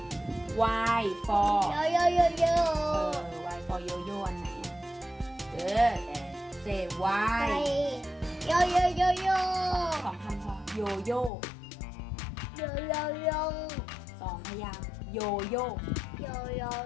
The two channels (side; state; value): right; drops out; at 11.3 s